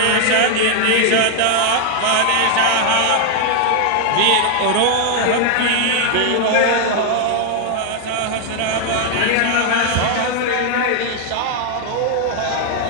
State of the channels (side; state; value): both; different; correlation 0.00